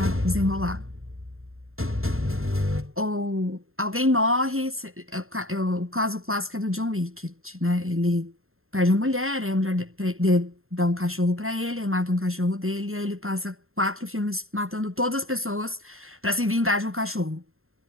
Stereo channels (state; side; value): late; left; 0.61 ms